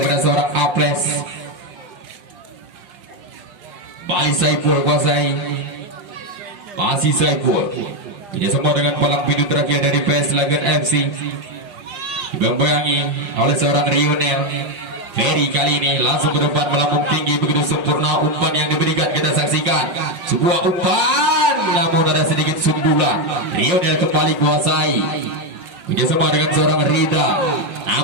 kepada seorang Aples. Balik Saiful kuasai. Masih Saiful. Kerjasama dengan palang pintu terakhir dari PS Lagan FC. Dibayang-bayangi oleh seorang Rionel. Ferry kali ini langsung ke depan melambung tinggi begitu sempurna umpan yang diberikan. Kita saksikan sebuah umpan, namun ada sedikit sundulan. Rionel kembali kuasai. Kerjasama dengan seorang Rida,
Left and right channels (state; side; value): late; left; 5.4 ms